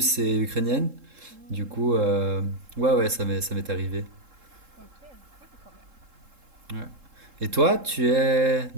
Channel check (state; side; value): late; left; 3.7 ms